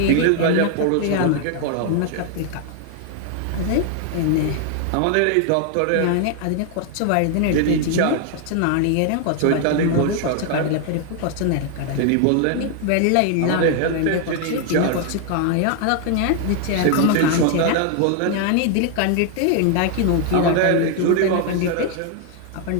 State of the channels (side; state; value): both; different; correlation 0.00